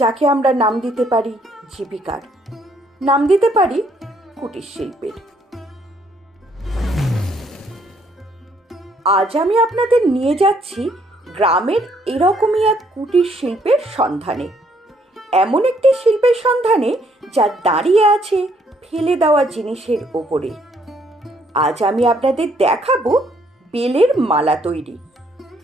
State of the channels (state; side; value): normal; both; correlation 0.68